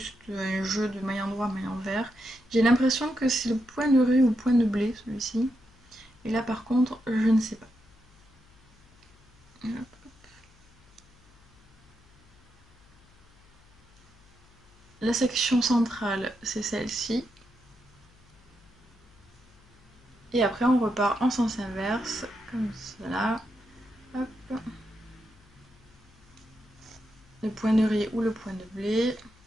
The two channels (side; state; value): left; noise; hum, 29 dB below the sound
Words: un jeu de maille endroit, maille envers. J'ai l'impression que c'est le point de riz ou le point de blé, celui-ci. Et là, par contre, je ne sais pas. La section centrale, c'est celle-ci. Et après, on repart en sens inverse, comme cela. Hop. Le point de riz ou le point de blé.